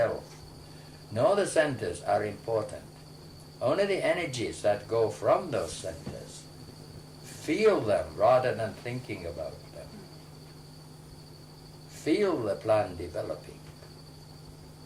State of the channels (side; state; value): both; identical; correlation 1.00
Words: nor the centers are important. Only the energies that go from those centers. Feel them rather than thinking about them. Feel the plan developing.